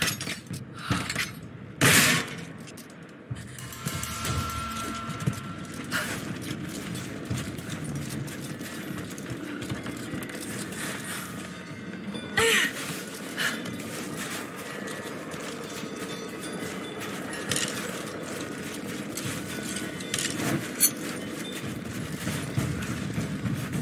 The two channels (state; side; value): identical; both; correlation 1.00